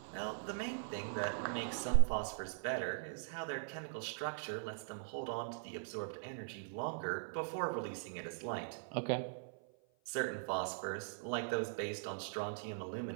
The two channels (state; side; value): silent; left; 50 dB below the other